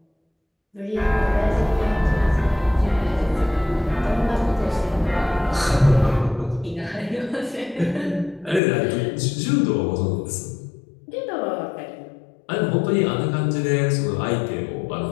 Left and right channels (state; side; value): drops out; right; at 8.6 s